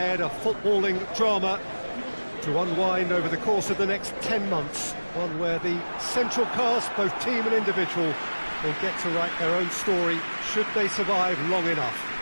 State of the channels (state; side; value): inverted; both; correlation -1.00